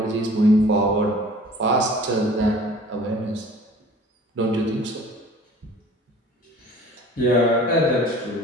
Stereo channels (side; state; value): both; normal; correlation 0.47